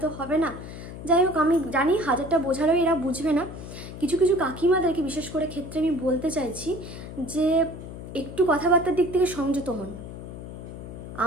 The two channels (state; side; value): noise; left; hum, 11 dB below the sound